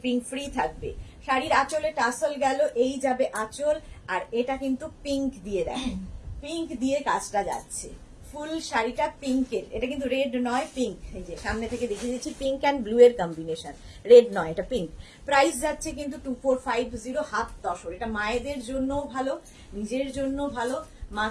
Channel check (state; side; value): identical; both; correlation 1.00